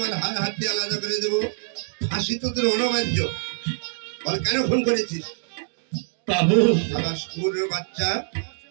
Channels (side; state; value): left; silent; digital silence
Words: হাড় হাড্ডি আলাদা করে দেবো, ফাঁসি তো তোর অনবার্য। বল কেন খুন করেছিস? বাবু, শালা স্কুলের বাচ্চা,